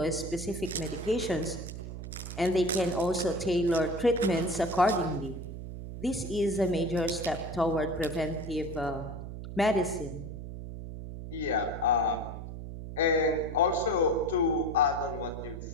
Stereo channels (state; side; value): noise; right; hum, 9 dB below the sound